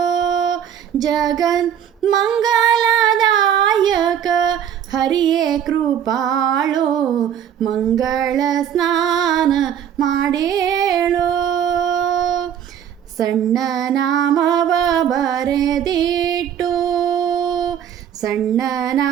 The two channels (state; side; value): quieter; left; 9.3 dB